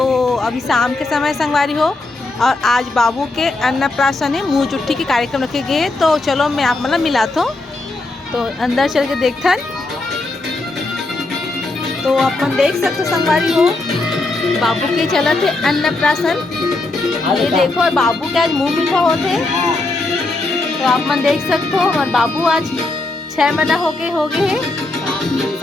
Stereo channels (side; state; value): right; quieter; 3.0 dB